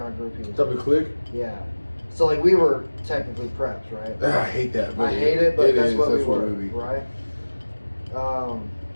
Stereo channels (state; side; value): inverted; both; correlation -1.00